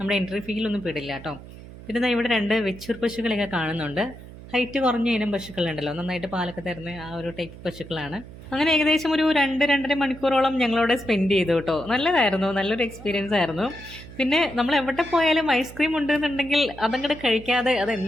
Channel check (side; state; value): right; noise; hum, 16 dB below the sound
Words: എൻട്രി ഫീലൊന്നും പെടില്ല കേട്ടോ. പിന്നെ ഇവിടെ 2 വെച്ചൂർ പശുക്കളെയൊക്കെ കാണുന്നുണ്ട്. ഹൈറ്റ് കുറഞ്ഞ ഇനം പശുക്കളുണ്ടല്ലോ, നന്നായിട്ട് പാലൊക്കെ തരുന്ന ആ ഒരു ടൈപ്പ് പശുക്കളാണ്. അങ്ങനെ ഏകദേശം ഒരു 2-2.5 മണിക്കൂറോളം ഞങ്ങളവിടെ സ്പെൻഡ് ചെയ്തു കേട്ടോ. നല്ലതായിരുന്നു, നല്ലൊരു എക്സ്പീരിയൻസ് ആയിരുന്നു. പിന്നെ നമ്മൾ എവിടെ പോയാലും ഐസ്ക്രീം ഉണ്ടെന്നുണ്ടെങ്കിൽ അതങ്ങോട്ട് കഴിക്കാതെ, അത്